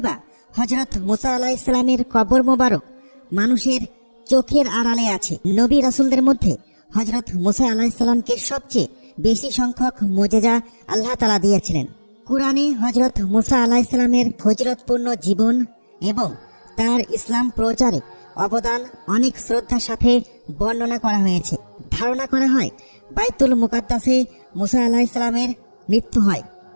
বা হযরত মুসা আলাইহিস সালামের কবর মোবারক মানুষের চোখের আড়ালে আছে? নবী রাসূলদের মধ্যে হযরত মুসা আলাইহিস সালামকে সবচেয়ে বেশি সংখ্যক মুজিজা আল্লাহ তাআলা দিয়েছিলেন। কুরআনে হযরত মুসা আলাইহিস সালামের ফজিলতপূর্ণ জীবন এবং তার ইসলাম প্রচারে অবদান অনেক শ্রদ্ধার সাথে বর্ণনা করা হয়েছে। ধারণা করা হয় বাইতুল মুকাদ্দাসে মুসা আলাইহিস সালামের মৃত্যু হয়,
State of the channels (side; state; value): both; inverted; correlation -1.00